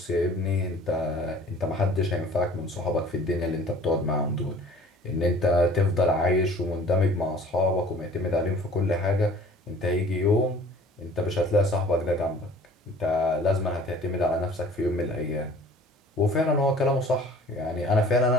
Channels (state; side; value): normal; both; correlation 0.49